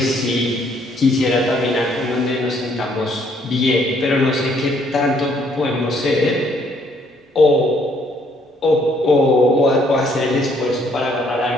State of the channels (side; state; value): both; normal; correlation 0.66